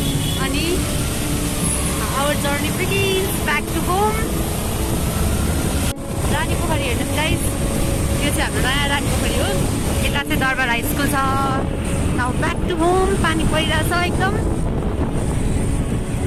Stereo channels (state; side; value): identical; both; correlation 1.00